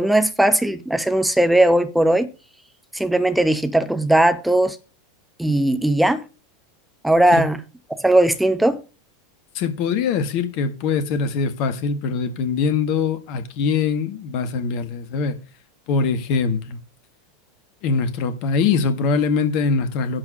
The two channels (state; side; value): normal; both; correlation 0.61